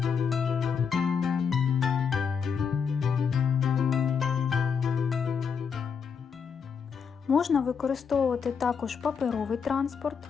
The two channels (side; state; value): right; quieter; 6.4 dB